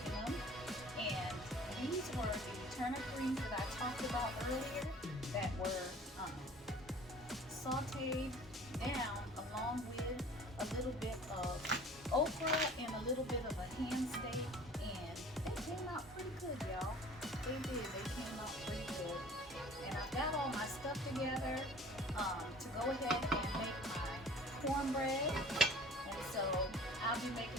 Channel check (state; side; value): normal; both; correlation 0.47